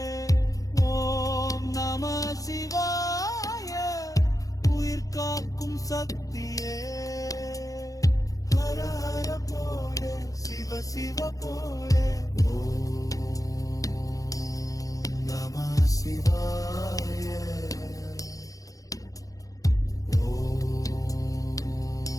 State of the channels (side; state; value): right; late; 0.17 ms